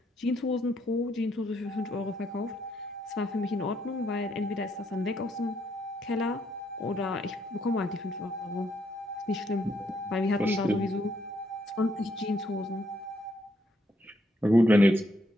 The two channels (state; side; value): normal; both; correlation 0.74